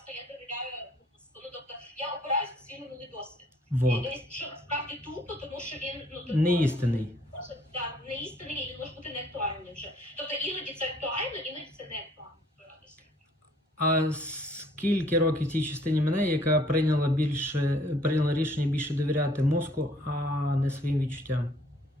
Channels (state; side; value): normal; both; correlation 0.59